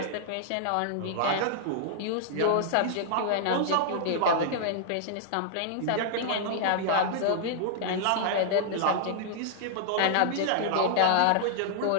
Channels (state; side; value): different; both; correlation -0.01